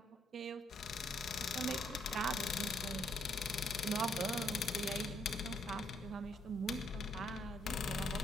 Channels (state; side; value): normal; both; correlation 0.71